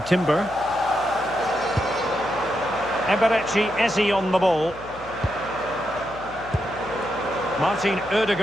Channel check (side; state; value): left; noise; hum, 19 dB below the sound